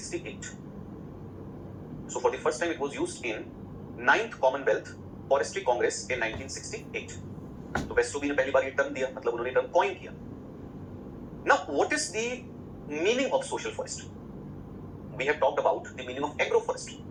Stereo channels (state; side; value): identical; both; correlation 1.00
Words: So for the first time it was used in 9th Commonwealth Forestry Congress in 1968. तो वेस्टोबी ने पहली बार ये term दिया, मतलब उन्होंने term coin किया. Now what is the meaning of social forestry? We have talked about the meaning of agroforestry.